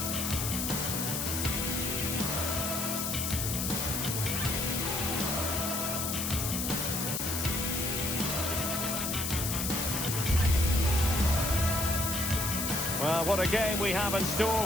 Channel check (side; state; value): left; noise; hiss, 1 dB below the sound